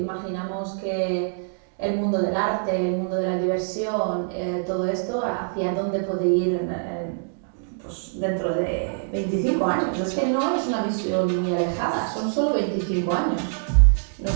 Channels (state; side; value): silent; left; digital silence